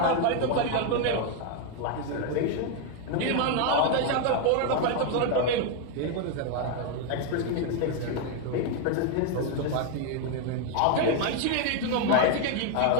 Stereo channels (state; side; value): different; both; correlation 0.01